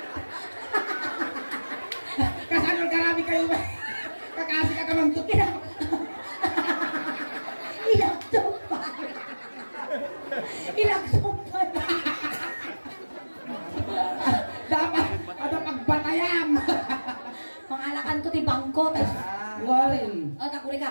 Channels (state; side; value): inverted; both; correlation -1.00